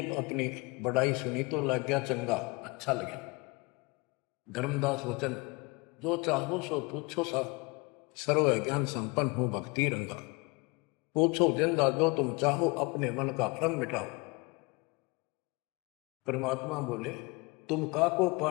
अपनी बड़ाई सुनी तो लग गया चंगा, अच्छा लगा। धर्मदास वचन, जो चाहो सो पूछो सा, सर्व ज्ञान संपन्न हो भक्ति रंगा। पूछो जिंदा जो तुम चाहो, अपने मन का भ्रम मिटाओ। परमात्मा बोले, तुम का को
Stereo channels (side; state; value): right; quieter; 27.4 dB